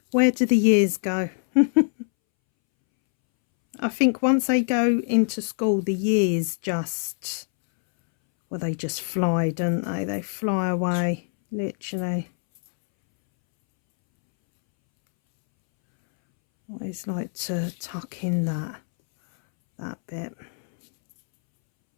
Where do the years go? I think once they go into school, the years just, well, they just fly, don't they? They fly away, literally. Always like to tuck in that bit.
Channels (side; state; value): right; silent; 63 dB below the other